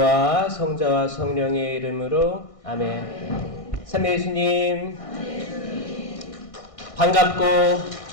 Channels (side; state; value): right; late; 1.6 ms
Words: 성자와 성령의 이름으로 아멘. 삼위 예수님 반갑고